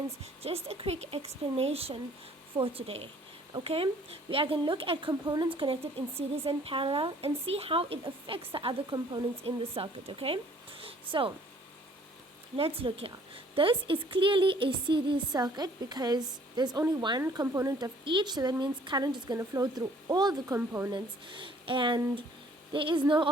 Just a quick explanation for today. Okay, we are going to look at components connected in series and parallel and see how it affects the other components in the circuit. Okay, so let's look here. This is clearly a series circuit because there's only one component of each, so that means current is going to flow through all the components and there is no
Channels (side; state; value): both; normal; correlation 0.58